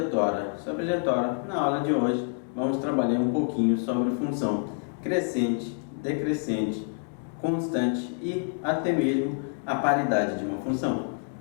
sobrejetória. Na aula de hoje vamos trabalhar um pouquinho sobre função crescente, decrescente, constante e até mesmo a paridade de uma função.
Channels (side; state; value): right; silent; 60 dB below the other